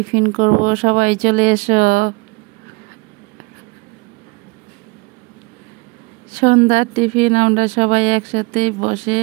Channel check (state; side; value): quieter; left; 26.6 dB